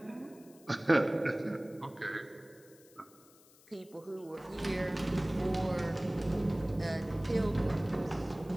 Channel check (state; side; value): noise; left; hiss, 26 dB below the sound